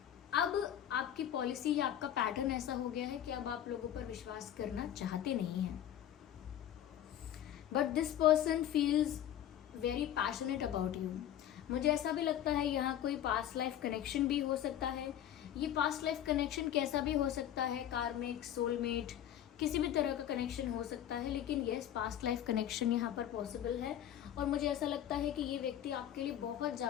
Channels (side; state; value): right; quieter; 11.0 dB